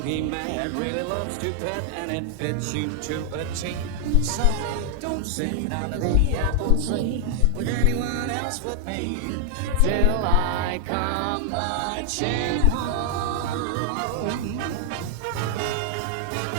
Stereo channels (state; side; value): different; both; correlation 0.00